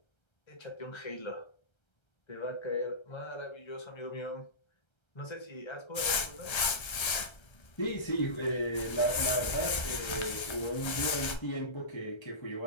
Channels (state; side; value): late; right; 1.3 ms